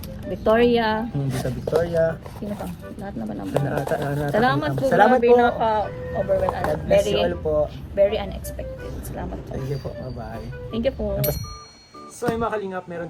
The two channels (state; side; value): identical; both; correlation 1.00